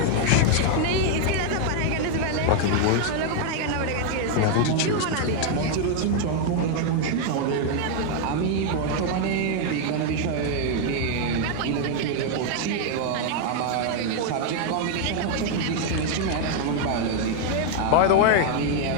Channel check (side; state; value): both; different; correlation 0.00